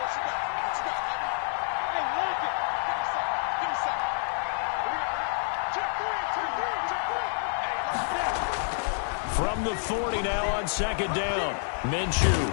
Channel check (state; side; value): silent; right; 59 dB below the other